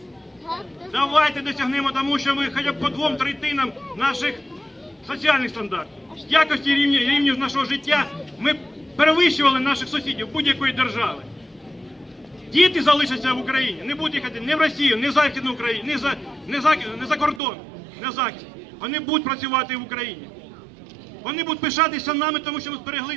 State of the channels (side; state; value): left; drops out; at 17.4 s